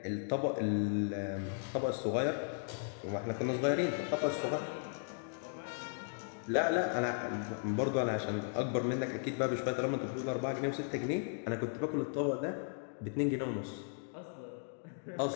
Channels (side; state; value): right; silent; digital silence